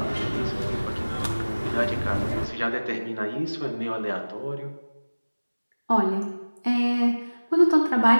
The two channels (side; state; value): both; inverted; correlation -1.00